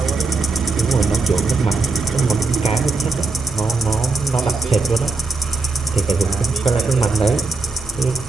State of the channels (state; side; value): quieter; left; 3.7 dB